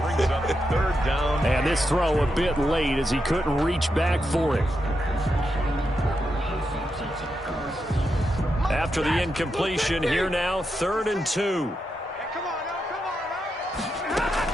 Brings up 3rd down. And this throw a bit late as he couldn't reach back for it. After the incompletion, here now, 3rd and 2.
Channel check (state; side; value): normal; both; correlation 0.85